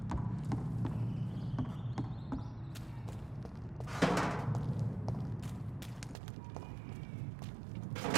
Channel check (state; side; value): drops out; left; at 6.2 s